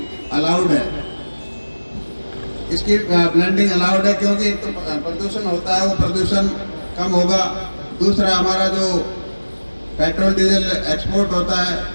अलाउड है, इसकी ब्लेंडिंग अलाउड है क्योंकि एक तो प्रदूषण होता है, वो प्रदूषण कम होगा। दूसरा, हमारा जो पेट्रोल डीजल एक्सपोर्ट होता है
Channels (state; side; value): inverted; both; correlation -1.00